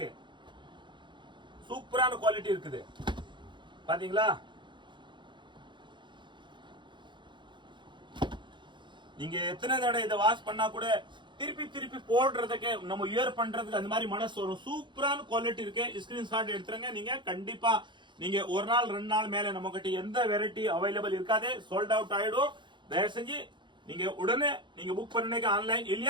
சூப்பரான குவாலிட்டி இருக்குது பாத்தீங்களா. நீங்க எத்தனை தடவை இதை வாஷ் பண்ணா கூட திருப்பி போடுறதுக்கு நம்ம இயர் பண்றதுக்கு அந்த மாதிரி மனசு வரும். சூப்பரான குவாலிட்டி இருக்கு. ஸ்கிரீன்ஷாட் எடுத்துருங்க. நீங்க கண்டிப்பா நீங்க ஒரு நாள் 2 நாள் மேல நம்ம கிட்ட எந்த வெரைட்டி அவைலபிள் இருக்காது, சோல்ட் அவுட் ஆயிடும். தயவு செஞ்சு நீங்க உடனே நீங்க புக் பண்ணீங்க ஆன்லைன்,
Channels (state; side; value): late; left; 0.23 ms